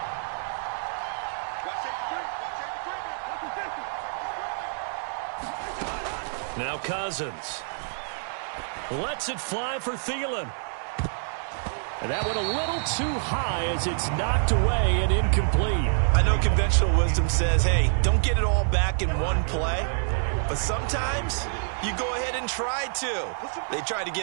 Now Cousins lets it fly for Thielen. And that went a little too high as it's knocked away and incomplete. I know conventional wisdom says, hey, don't get it all back in one play. But sometimes you go ahead and try to. They tried to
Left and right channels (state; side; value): silent; left; digital silence